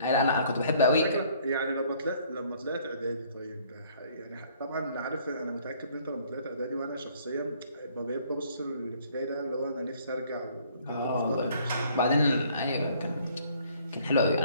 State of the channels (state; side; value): inverted; both; correlation -0.60